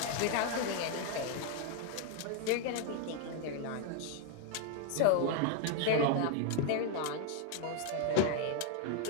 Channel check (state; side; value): different; both; correlation 0.01